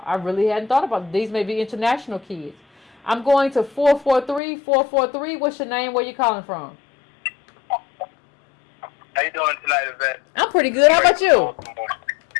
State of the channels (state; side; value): drops out; right; at 4.4 s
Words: These may be international kids. I'm going to 443. What's your name? Where you calling from? How you doing tonight, Yvette? I'm pretty good. How about you?